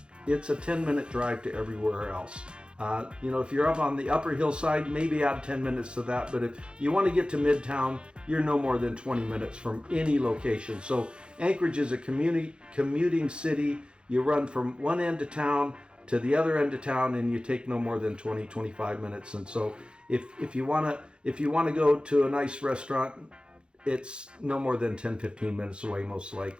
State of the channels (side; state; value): left; late; 0.054 ms